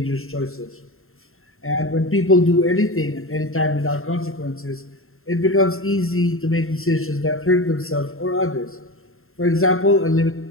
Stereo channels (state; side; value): late; right; 0.61 ms